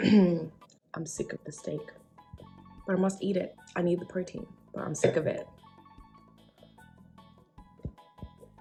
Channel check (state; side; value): identical; both; correlation 1.00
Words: I'm sick of the steak, but I must eat it. I need the protein, but I'm sick of it.